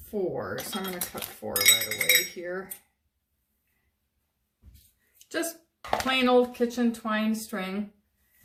So I'm going to cut 4 right away here. Just plain old kitchen twine string.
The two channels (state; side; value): identical; both; correlation 1.00